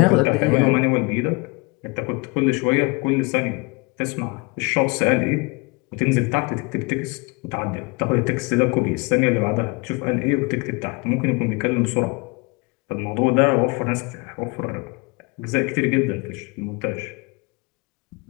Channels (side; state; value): right; quieter; 27.5 dB